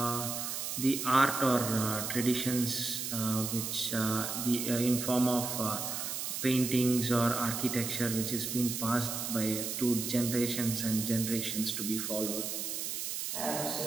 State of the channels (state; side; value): noise; right; hiss, 3 dB below the sound